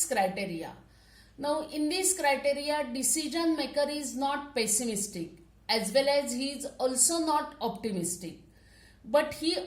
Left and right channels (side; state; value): both; identical; correlation 1.00